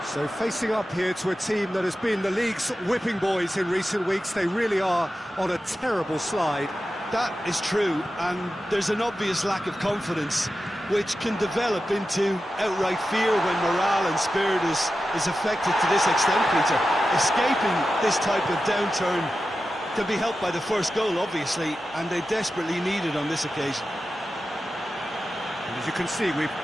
So facing up here to a team that has been the league's whipping boys in recent weeks, they really are on a terrible slide. That is true, and there's an obvious lack of confidence, which can develop into outright fear when morale and spirit is affected to this extent, Peter. Escaping this type of downturn can be helped by the first goal, obviously, and they desperately need it on this occasion. And as you can see, we've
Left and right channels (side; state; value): both; normal; correlation 0.92